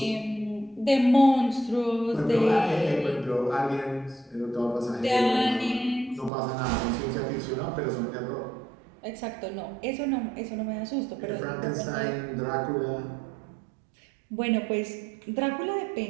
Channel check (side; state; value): left; drops out; at 6.3 s